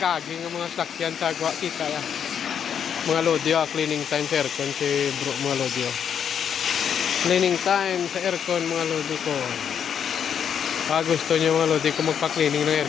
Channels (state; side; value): quieter; right; 8.1 dB